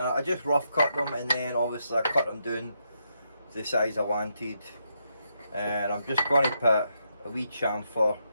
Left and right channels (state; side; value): inverted; both; correlation -0.81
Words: I just rough cut them, and then obviously I cut them down to the size I wanted, and I'm just going to put a wee chamfer